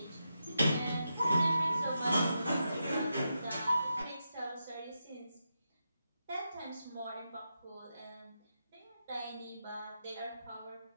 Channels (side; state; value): both; inverted; correlation -0.86